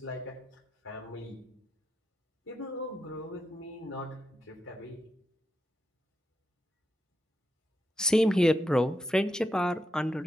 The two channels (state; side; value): normal; both; correlation 0.84